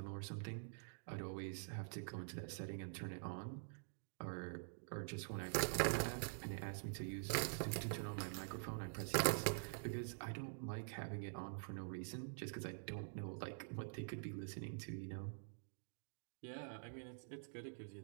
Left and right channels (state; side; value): silent; left; digital silence